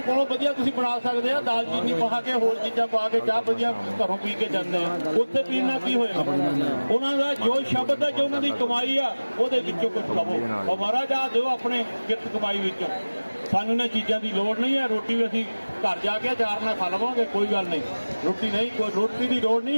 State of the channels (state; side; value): inverted; both; correlation -1.00